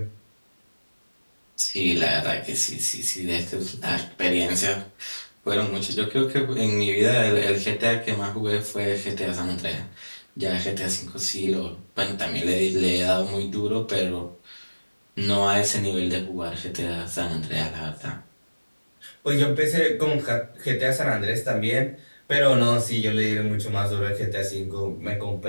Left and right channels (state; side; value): inverted; both; correlation -1.00